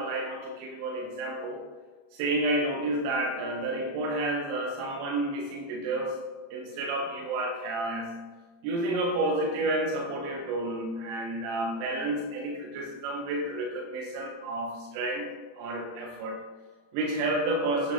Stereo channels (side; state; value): left; late; 35 ms